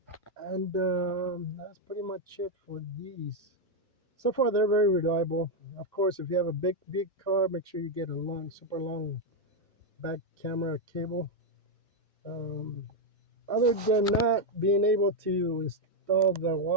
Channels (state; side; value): normal; both; correlation 0.01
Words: And that's pretty much it for these. So far, they're very reliable. Of course, if you have a big car, make sure you get a long, super long back camera cable. Um, Other than not being able to install the